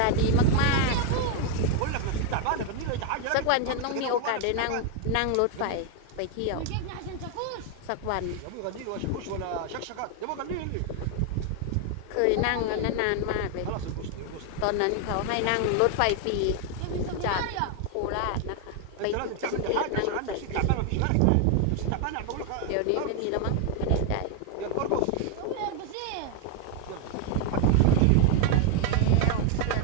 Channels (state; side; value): different; both; correlation 0.01